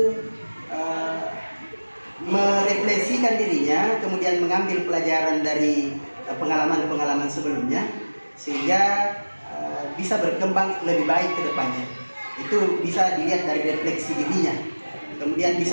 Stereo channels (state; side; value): inverted; both; correlation -1.00